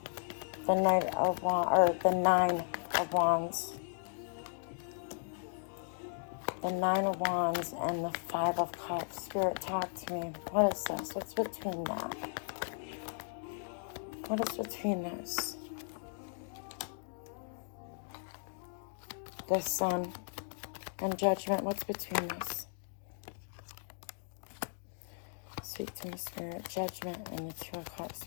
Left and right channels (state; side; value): silent; right; digital silence